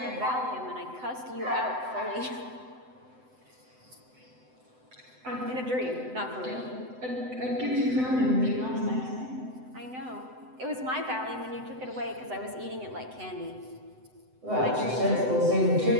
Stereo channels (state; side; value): late; left; 7.9 ms